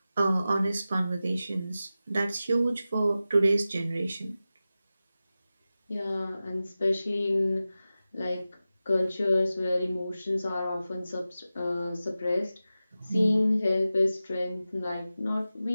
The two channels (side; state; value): both; inverted; correlation -0.94